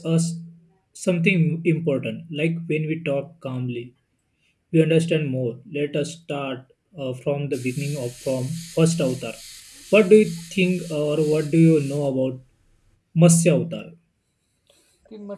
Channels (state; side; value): identical; both; correlation 1.00